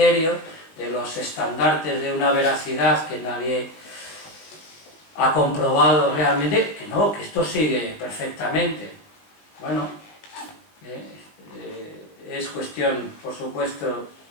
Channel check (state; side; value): late; right; 19 ms